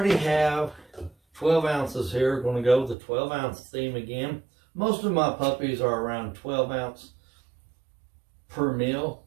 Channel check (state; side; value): drops out; left; at 3.0 s